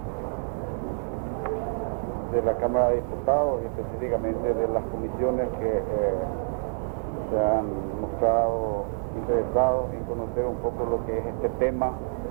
de la Cámara de Diputados y específicamente de las comisiones que se han mostrado interesados en conocer un poco lo que es este tema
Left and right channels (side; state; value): left; silent; 60 dB below the other